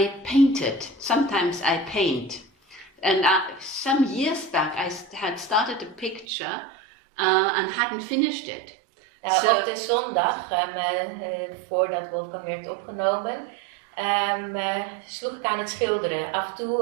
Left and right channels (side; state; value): left; drops out; at 6.2 s